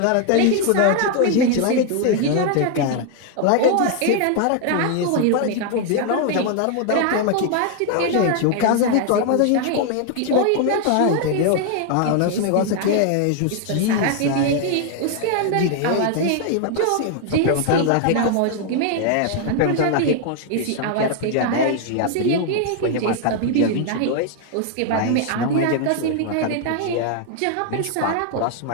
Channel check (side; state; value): both; different; correlation 0.00